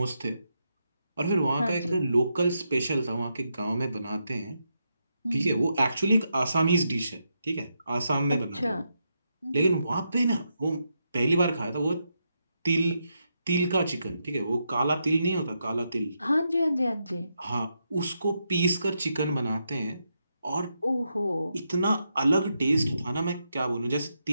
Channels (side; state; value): both; inverted; correlation -0.83